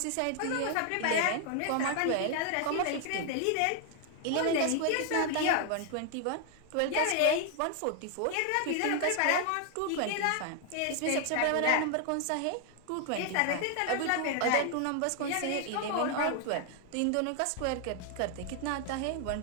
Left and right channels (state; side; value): different; both; correlation 0.00